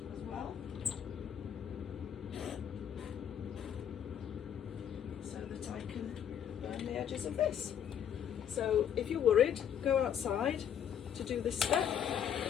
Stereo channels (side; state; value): right; quieter; 9.1 dB